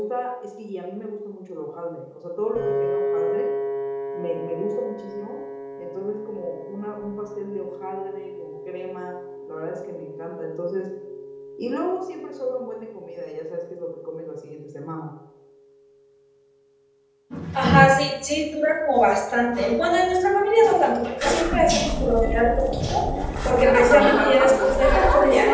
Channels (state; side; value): identical; both; correlation 1.00